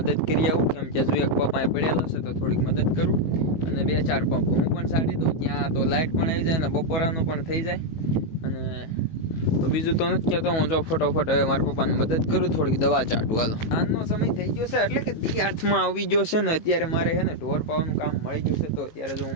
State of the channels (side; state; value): right; late; 18 ms